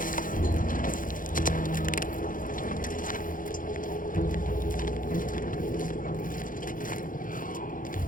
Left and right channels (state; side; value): late; right; 0.39 ms